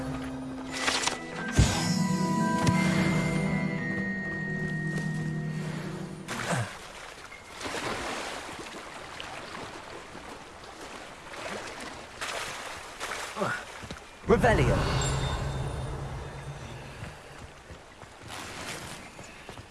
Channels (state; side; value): identical; both; correlation 1.00